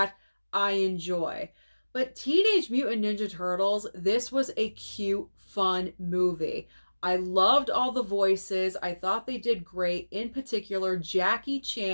I enjoy. But Teenage Mutant Ninja Turtles, this was a cute, fun movie. I loved all the voices. I thought they did great. In particular, Jackie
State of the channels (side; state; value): both; inverted; correlation -1.00